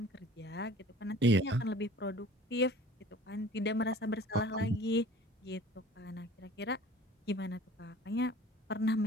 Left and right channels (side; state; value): both; normal; correlation 0.47